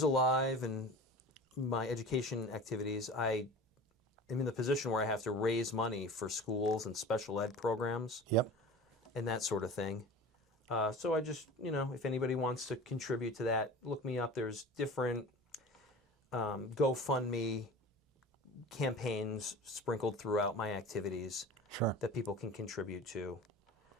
Alive and my education activities, I am in the position where I have to raise money for schools and special ed programs. Yep. And that sort of thing. So I just, if anybody wants to contribute to that, look me up. There's different GoFundMe campaigns sprinkled throughout my activities that people can contribute to.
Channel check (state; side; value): normal; both; correlation 0.37